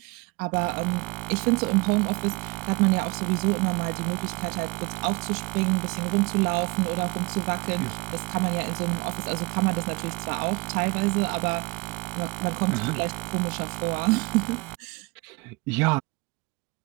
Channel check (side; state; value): left; quieter; 25.8 dB